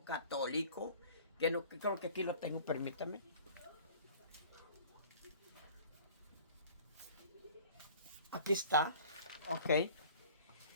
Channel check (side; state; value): both; inverted; correlation -0.47